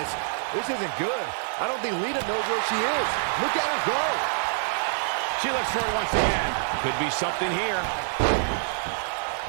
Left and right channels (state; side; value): silent; left; digital silence